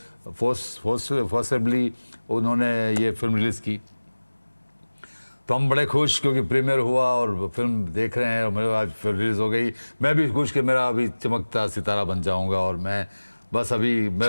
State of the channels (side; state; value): both; inverted; correlation -1.00